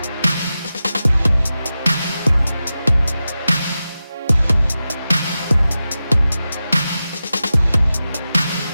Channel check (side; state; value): both; inverted; correlation -0.93